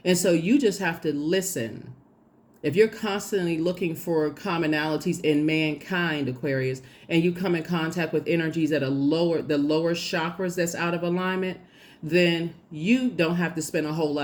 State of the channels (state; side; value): identical; both; correlation 1.00